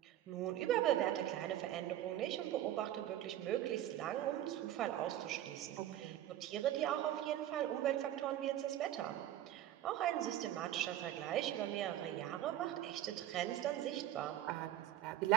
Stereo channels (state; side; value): quieter; left; 12.8 dB